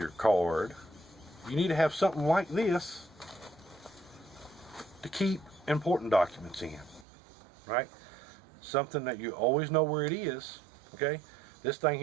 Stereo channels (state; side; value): drops out; left; at 7.1 s